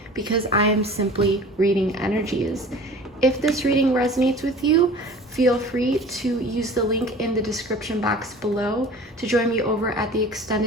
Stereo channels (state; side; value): normal; both; correlation 0.42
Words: because I am simply reading energies. If this reading resonates with you, feel free to use the link in the description box below to join me over at the